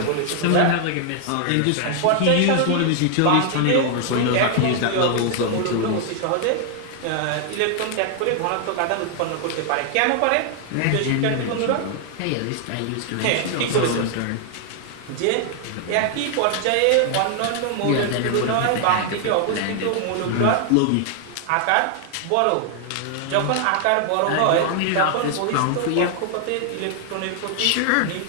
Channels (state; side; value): different; both; correlation 0.00